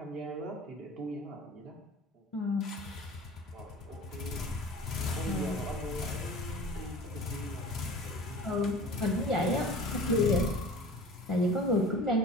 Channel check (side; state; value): both; normal; correlation 0.41